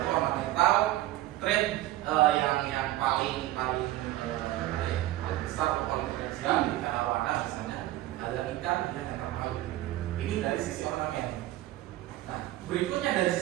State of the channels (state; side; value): quieter; left; 15.8 dB